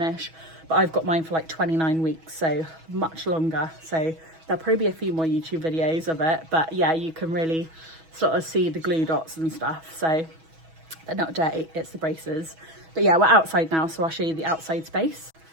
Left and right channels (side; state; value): left; late; 6.2 ms